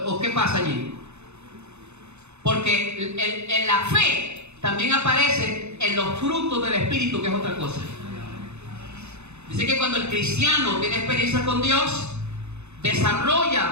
¿O qué pasa allí? Porque en la fe también aparece en los frutos del Espíritu, que es otra cosa. Dice que cuando el cristiano tiene experiencia con Dios,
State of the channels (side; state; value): left; late; 0.81 ms